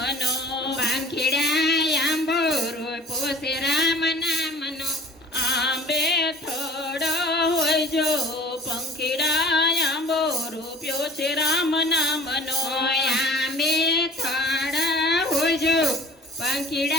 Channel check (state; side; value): normal; both; correlation 0.46